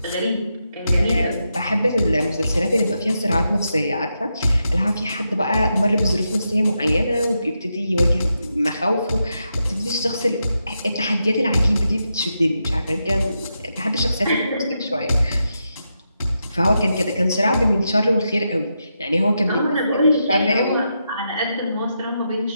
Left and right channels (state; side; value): inverted; both; correlation -0.85